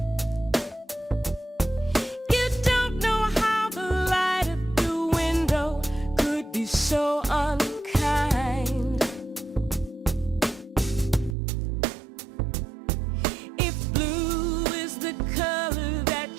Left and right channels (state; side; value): drops out; left; at 11.4 s